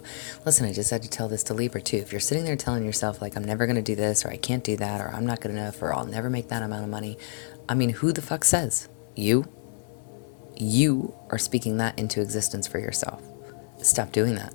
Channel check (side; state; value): right; silent; 60 dB below the other